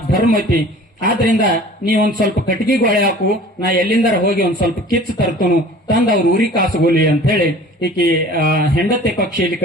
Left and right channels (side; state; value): both; normal; correlation 0.45